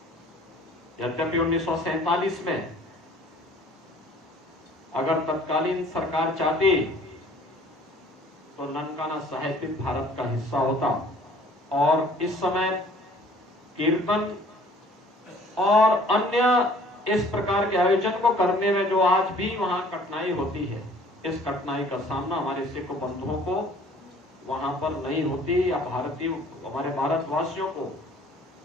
यद्यपि 1947 में अगर तत्कालीन सरकार चाहती तो ननकाना साहिब भी भारत का हिस्सा होता और इस समय कीर्तन और अन्य इस प्रकार के आयोजन को करने में जो आज भी वहां कठिनाई होती है, इस कठिनाई का सामना हमारे सिख बंधुओं को वहां पर नहीं होती या भारतीय हमारे भारतवासियों को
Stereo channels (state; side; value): normal; both; correlation 0.53